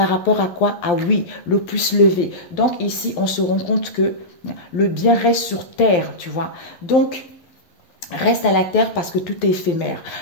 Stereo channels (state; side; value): late; right; 12 ms